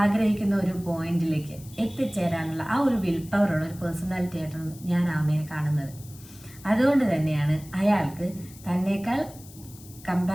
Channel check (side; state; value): left; noise; hiss, 20 dB below the sound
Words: ഒരു പോയിന്റിലേക്ക് എത്തിച്ചേരാനുള്ള ആ ഒരു വിൽ പവറുള്ള ഒരു പേഴ്സണാലിറ്റി ആയിട്ടാണ് ഞാൻ ആമയെ കാണുന്നത്. അതുകൊണ്ട് തന്നെയാണ് അയാൾക്ക് തന്നേക്കാൾ